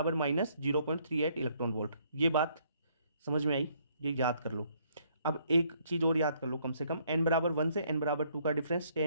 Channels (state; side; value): inverted; both; correlation -0.67